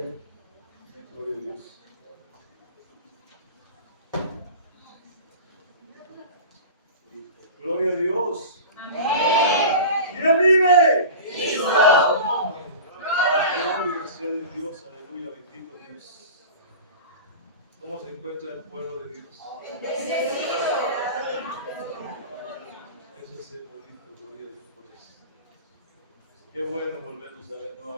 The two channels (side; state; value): both; inverted; correlation -0.34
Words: Gloria a Dios. Gloria a Dios. ¿Quién vive? Gloria sea de Dios, aleluya, bendito Dios. ¿Cómo se encuentra el pueblo de Dios? Eso es el bonito, gloria a Dios por eso. Qué bueno volvernos a ver